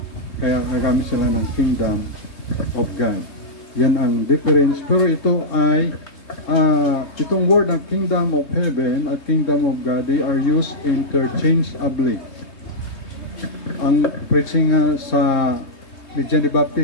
Kaya nagamit sila ng Kingdom of God. Yan ang difference. Pero ito ay itong word ng Kingdom of Heaven at Kingdom of God, they are used interchangeably. Ang preaching sa ni John the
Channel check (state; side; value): late; right; 3.2 ms